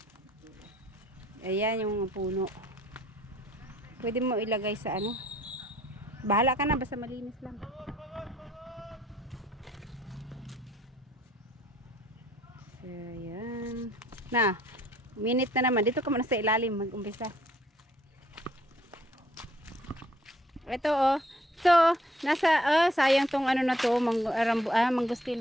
Ayan yung puno. Pwede mo ilagay sa ano. Bahala ka na, basta malinis lang. So, ayan. Na, minute na naman. Dito ka muna sa ilalim, mag-umpisa. Ito, oh. So, nasa, sayang tong ano na to,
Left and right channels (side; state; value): both; normal; correlation 0.62